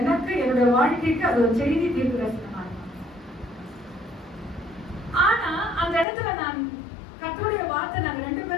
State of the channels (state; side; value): drops out; right; at 6.1 s